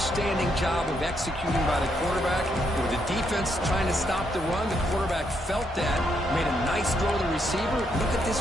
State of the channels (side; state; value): both; normal; correlation 0.77